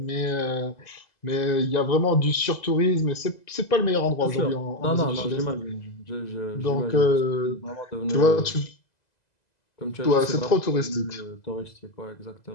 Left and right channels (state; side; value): late; right; 2.0 ms